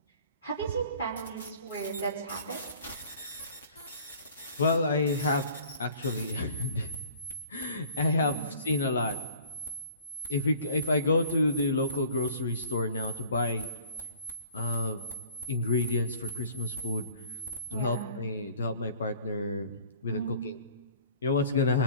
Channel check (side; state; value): both; inverted; correlation -0.50